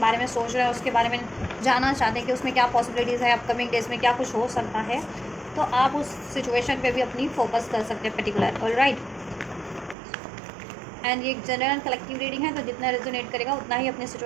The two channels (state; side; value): drops out; left; at 10.0 s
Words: में सोच रहे हैं, उसके बारे में जानना चाहते हैं कि उसमें क्या पॉसिबिलिटीज़ है, अपकमिंग डेज में क्या कुछ हो सकता है, तो आप उस सिचुएशन पे भी अपनी फोकस कर सकते हैं पर्टिकुलर। ऑलराइट, एंड ये जनरल कलेक्टिव रीडिंग है, तो जितना रेजोनेट करेगा उतना ही अपनी